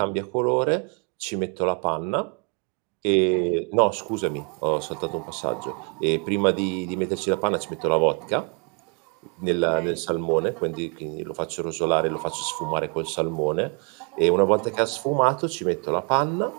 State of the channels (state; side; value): quieter; left; 37.4 dB